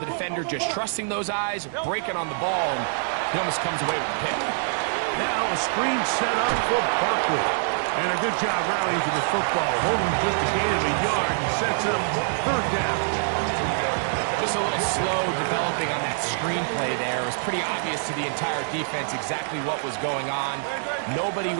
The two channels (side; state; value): left; silent; 62 dB below the other